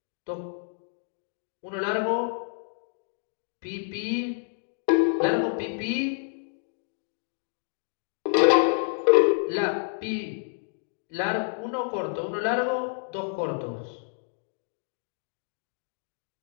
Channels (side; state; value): right; silent; digital silence